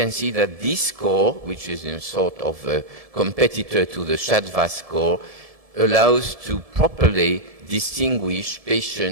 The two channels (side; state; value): left; late; 1.7 ms